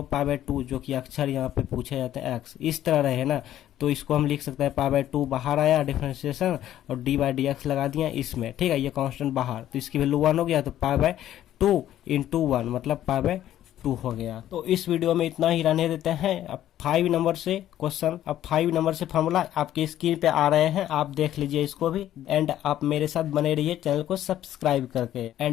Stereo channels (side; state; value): right; quieter; 12.3 dB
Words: पाई बाय 2 जो कि अक्षर यहाँ पे पूछे जाते हैं एक्स, इस तरह रहे ना, तो इसको हम लिख सकते हैं पाई बाय 2 बाहर आया डिफरेंशिएशन और डी बाय डी एक्स लगा दिया इसमें, ठीक है। ये कांस्टेंट बाहर, तो इसकी वैल्यू 1 हो गया, तो पाई बाय 2 इंटू 1 मतलब पाई बाय 2 हो गया। तो इस वीडियो में इतना ही रहने देते हैं। अब 5 नंबर से क्वेश्चन, अब 5 नंबर से फॉर्मूला आपकी स्क्रीन पे आ रहे हैं, आप देख लीजिए इसको भी। एंड आप मेरे साथ बने रहिए चैनल को सब्सक्राइब करके।